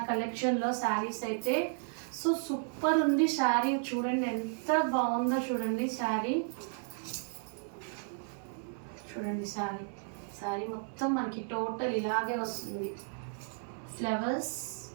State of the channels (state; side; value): silent; left; 55 dB below the other